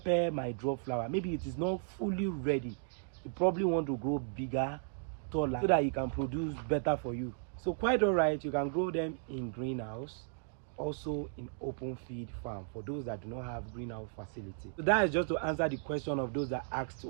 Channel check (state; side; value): silent; left; digital silence